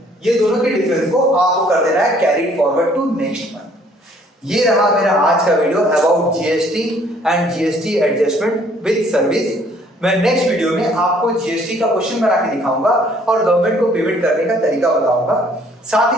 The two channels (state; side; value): normal; both; correlation 0.61